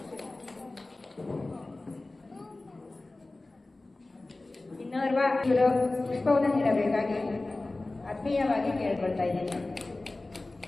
ಇನ್ನೋರ್ವ ಇವರು ಪುಷ್ಪವನ್ನು ನೀಡಬೇಕಾಗಿ ಆತ್ಮೀಯವಾಗಿ ಕೇಳಿಕೊಳ್ತಾ ಇದ್ದೇನೆ.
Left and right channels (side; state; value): right; quieter; 3.0 dB